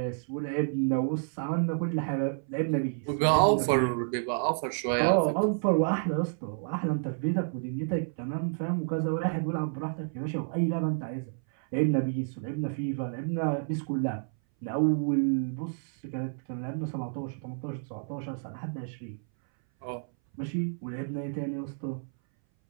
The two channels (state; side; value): silent; left; 58 dB below the other